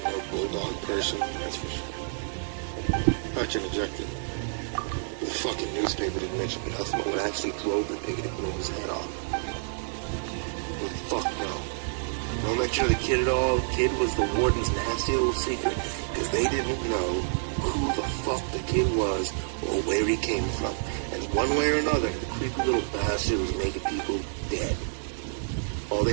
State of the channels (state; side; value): silent; left; 59 dB below the other